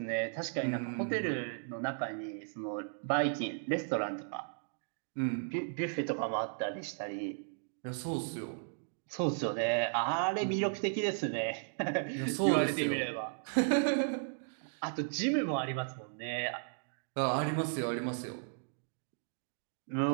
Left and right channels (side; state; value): left; silent; digital silence